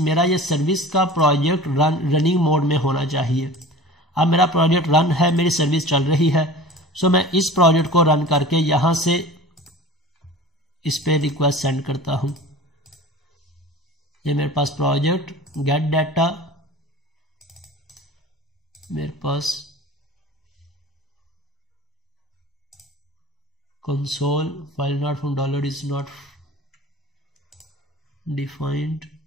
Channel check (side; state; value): both; normal; correlation 0.39